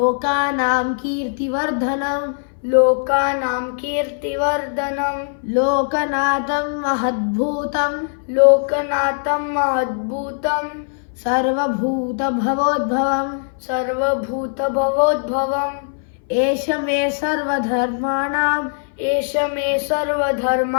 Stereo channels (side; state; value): right; silent; 60 dB below the other